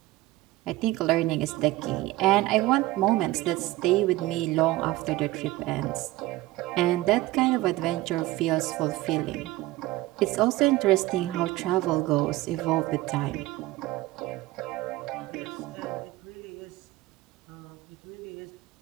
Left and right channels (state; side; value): quieter; left; 17.9 dB